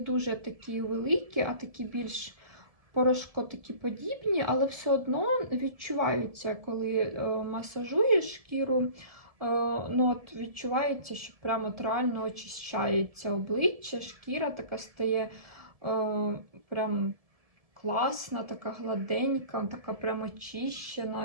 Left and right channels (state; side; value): late; left; 1.7 ms